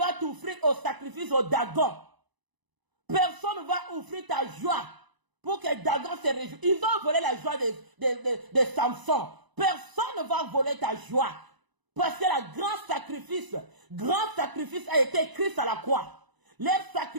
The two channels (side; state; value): left; late; 1.0 ms